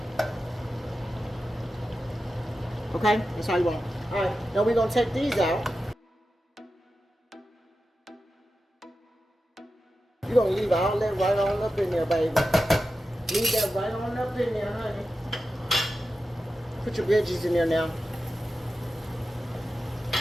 Okay, that's how you want. All right, now we're gonna take these out. You're gonna leave all that right on up in there, baby. Leave that right on up in there, honey. Put your veggies in there now.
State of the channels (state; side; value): normal; both; correlation 0.92